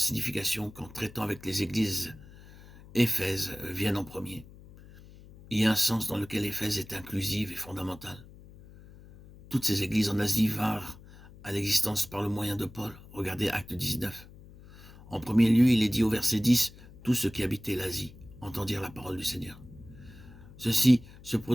qu'en traitant avec les églises, Éphèse vienne en premier. Il y a un sens dans lequel Éphèse est inclusive et fondamentale. Toutes ces églises en Asie vinrent à l'existence par le moyen de Paul. Regardez Acte 19. En premier lieu, il est dit au verset 10, « Tous ceux qui habitaient l'Asie entendirent la parole du Seigneur. » Ceci se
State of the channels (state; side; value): noise; left; hum, 20 dB below the sound